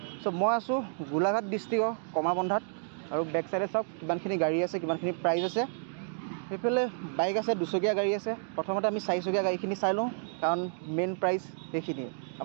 চ' মই আছোঁ গোলাঘাট ডিষ্ট্ৰিক্টৰ কমাৰবন্ধাত আৰু বেক চাইডে চাওক কিমানখিনি গাড়ী আছে কিমানখিনি প্ৰাইচ আছে সেইফালে বাইক আছে দুচকীয়া গাড়ী আছে প্ৰথমতে আমি চাৰিচকীয়া গাড়ীখিনি চাই লওঁ কাৰণ মেইন প্ৰাইচ সেইখিনিয়ে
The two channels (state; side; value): silent; left; digital silence